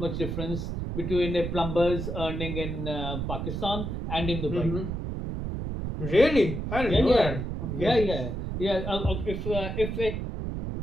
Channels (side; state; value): right; noise; rumble, 4 dB below the sound